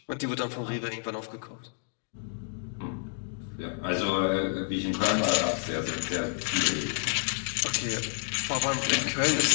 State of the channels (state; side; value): silent; right; digital silence